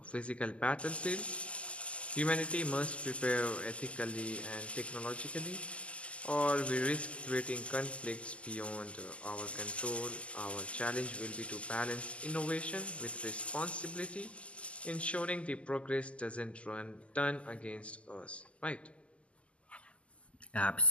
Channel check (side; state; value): right; late; 0.059 ms